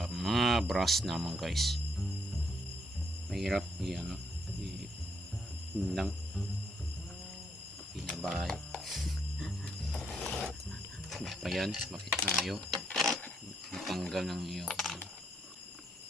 mga brass naman guys. Mahirap ano, lang pinabay. Pa yan, bakit tayo matanggal ng iyo.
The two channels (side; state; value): both; normal; correlation 0.74